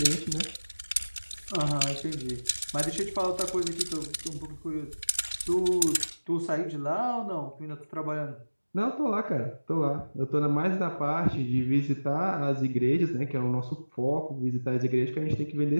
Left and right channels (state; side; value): inverted; both; correlation -1.00